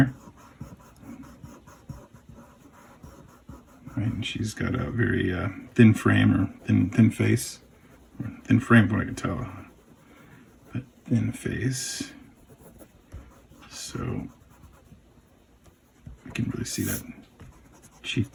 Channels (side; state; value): both; identical; correlation 1.00